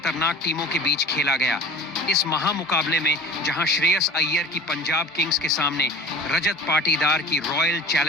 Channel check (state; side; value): normal; both; correlation 0.39